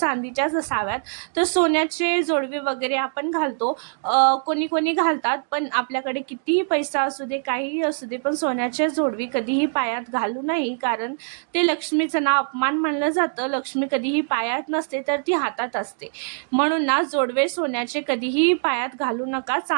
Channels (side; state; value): left; silent; digital silence